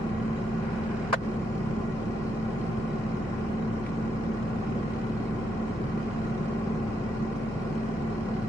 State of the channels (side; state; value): both; normal; correlation 0.80